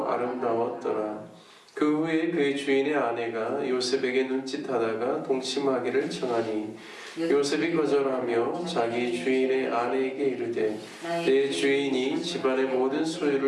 아름다웠더라. 그 후에 그의 주인의 아내가 요셉에게 눈짓하다가 동침하기를 청하니 요셉이 거절하며 자기 주인의 아내에게 이르되 내 주인이 집안의 모든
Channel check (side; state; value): both; identical; correlation 1.00